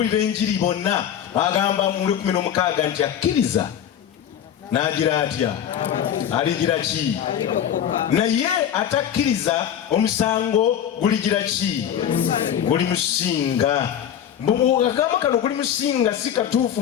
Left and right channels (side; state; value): right; quieter; 9.5 dB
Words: enjiri bonna, agamba mu 16 nti akkiriza n'agira atya? Aligira ki? Naye atakkiriza omusango guligira ki? Guli musinga. Agamba kano guli musinga si katuufu